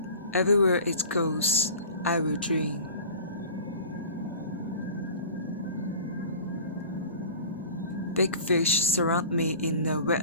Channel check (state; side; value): inverted; both; correlation -0.41